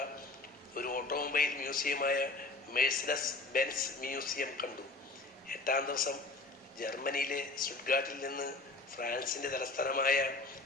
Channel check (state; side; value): quieter; right; 3.2 dB